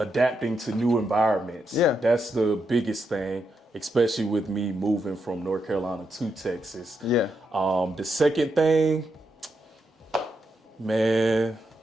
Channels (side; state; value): both; normal; correlation 0.83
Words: to new environments. Yeah. That's the biggest thing, especially with me moving from North Carolina to Texas. Yeah. The second thing, man,